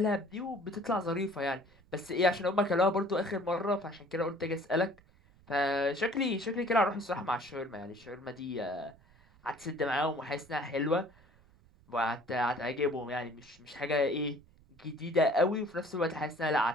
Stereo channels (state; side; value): noise; right; rumble, 28 dB below the sound